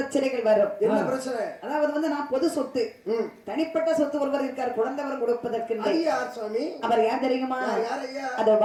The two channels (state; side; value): identical; both; correlation 1.00